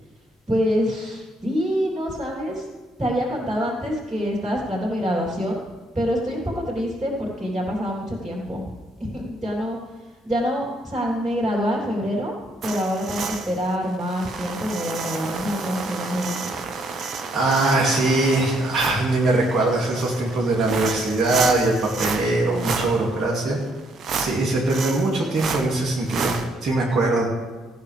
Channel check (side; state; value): both; normal; correlation 0.71